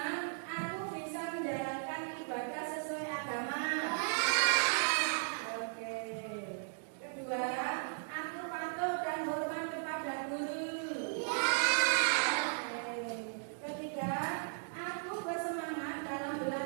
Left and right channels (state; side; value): silent; left; digital silence